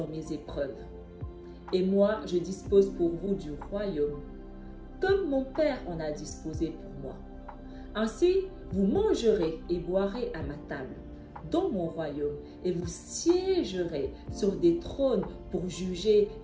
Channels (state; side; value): identical; both; correlation 1.00